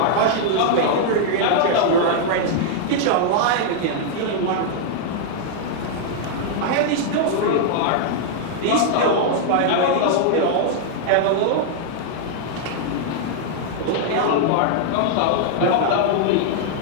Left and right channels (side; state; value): both; different; correlation -0.01